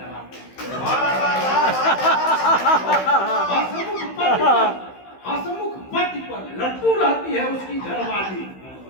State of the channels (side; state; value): right; late; 15 ms